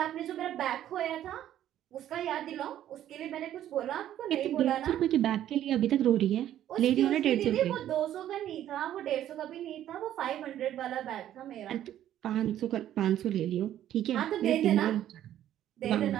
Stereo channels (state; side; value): quieter; left; 11.8 dB